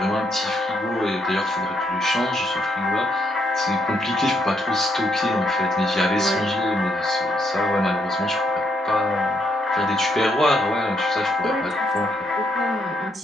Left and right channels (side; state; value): both; normal; correlation 0.75